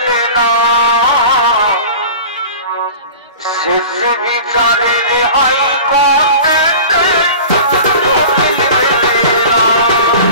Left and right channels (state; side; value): inverted; both; correlation -0.38